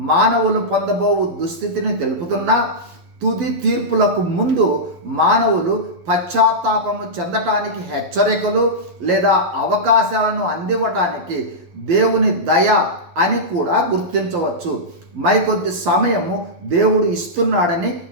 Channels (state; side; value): late; left; 11 ms